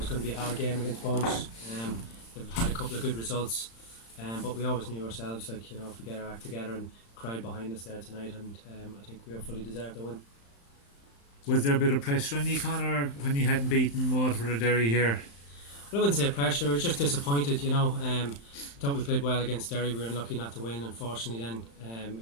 going to be a hard game against Bows. They've had a couple of good results, but we always knew ourselves, if we get our act together and crowd behind us there tonight, and I think we fully deserved the win. Was there a bit of pressure on you, Conor, when you hadn't beaten Waterford or Derry here? Well, I wouldn't say pressure. I was just disappointed. Thought we played well against Derry. We were unlucky not to win. Unfortunately, then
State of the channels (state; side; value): late; right; 35 ms